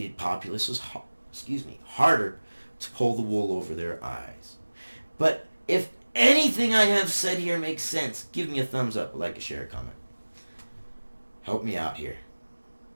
populace is harder to pull the wool over their eyes. But if anything I have said here makes sense, give me a thumbs up, a like, a share, a comment. Help me out here.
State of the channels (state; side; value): inverted; both; correlation -1.00